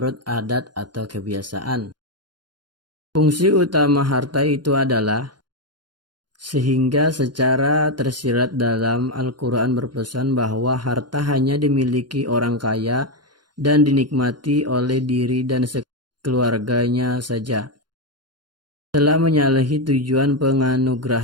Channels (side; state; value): left; late; 0.71 ms